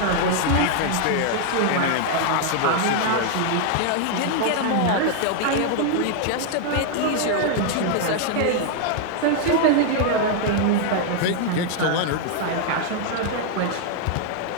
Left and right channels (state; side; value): different; both; correlation 0.00